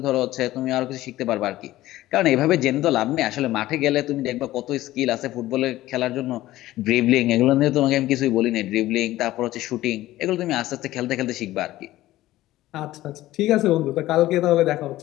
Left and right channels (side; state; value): right; quieter; 15.8 dB